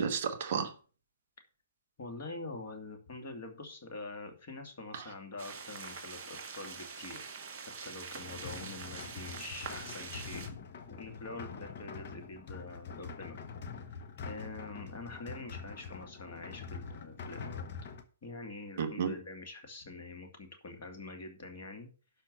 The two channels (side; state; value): both; inverted; correlation -0.41